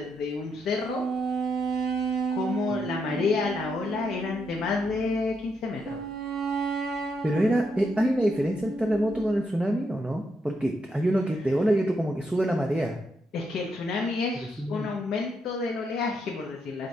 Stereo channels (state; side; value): normal; both; correlation 0.80